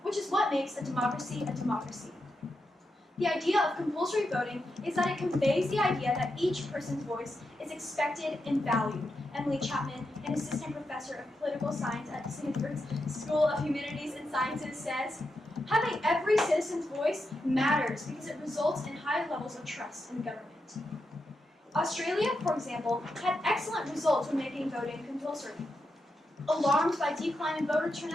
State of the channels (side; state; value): both; normal; correlation 0.86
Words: which is what makes a democracy a democracy. The idea of compulsory voting is that it conveys the idea that each person's voice is expected and valued. Emily Chapman, an assistant professor of political science at Stanford's School of Humanities and Sciences, says, having every citizen's voice matters because it results in high levels of trust in government. Australia, for example, had excellent results when making voting compulsory. Alarmed by decline in voter